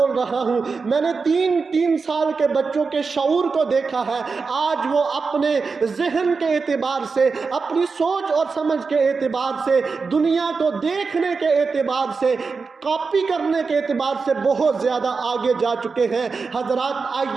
رہا ہوں، میں نے 3 سال کے بچوں کے شعور کو دیکھا ہے، آج وہ اپنے ذہن کے اعتبار سے، اپنی سوچ اور سمجھ کے اعتبار سے، دنیا کو دیکھنے کے اعتبار سے، کاپی کرنے کے اعتبار سے بہت زیادہ آگے جا چکے ہیں۔ حضرات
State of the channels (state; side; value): quieter; left; 4.7 dB